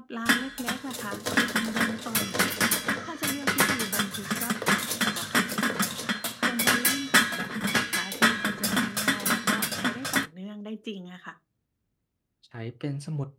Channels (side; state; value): both; identical; correlation 1.00